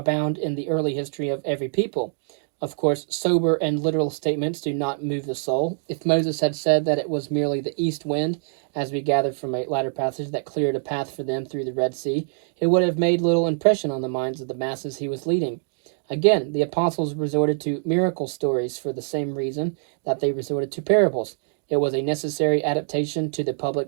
in the early history of every people. Of course, sober and literal statements do not move the soul. If Moses had said that it was merely the east wind, as we gathered from a latter passage, that cleared a path for them through the Red Sea, it would have made little impression on the minds of the masses he was leading. Again, the apostles resorted to miracle stories for the same reason that they resorted to parables. It was a necessary adaptation to the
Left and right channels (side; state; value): left; silent; digital silence